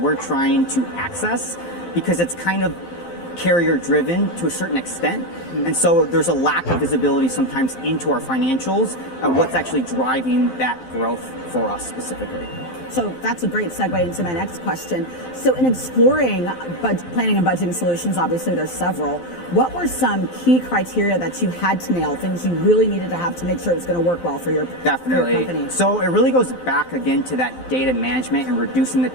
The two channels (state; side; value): late; right; 12 ms